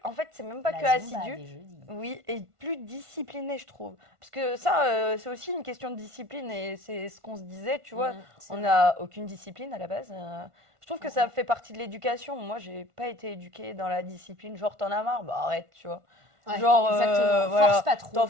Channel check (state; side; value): late; left; 1.5 ms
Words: En fait, c'est même pas que La Zumba assidu, des jeudis. oui, et plus discipliné, je trouve. Parce que ça, c'est aussi une question de discipline et c'est ce qu'on se disait, tu vois. C'est On vrai. n'a aucune discipline à la base. Je trouve que Mm, ça mm. fait partie de l'éducation. Moi, j'ai pas été éduquée dans la discipline. Genre, t'en as marre, bah arrête, tu vois. Ouais, Genre, exactement. Force voilà. pas trop.